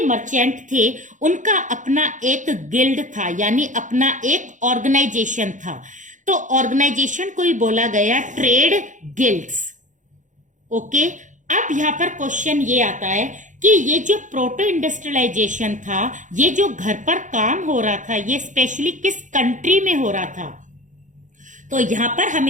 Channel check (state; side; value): late; left; 0.36 ms